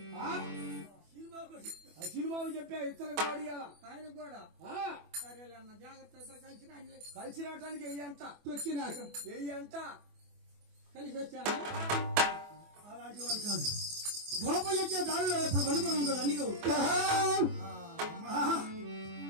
ఆ సినిమాకు చెప్పా ఇతరకు వాడియాలా ఆయన కూడా ఆ, సరేలే అన్న, జాగ్రత్త. ఇద్దరు కలిసి రండి. కలిసి రావటానికి వెయ్యి అంట. తొక్కినాక వెయ్యి అంట. కలిసి వచ్చాను. అలాంటి వాడు కాదు. గోపయ్య వచ్చే దారిలో ఇప్పుడు వలుపురం ఉంటుంది అన్నిగో.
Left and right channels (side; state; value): left; late; 24 ms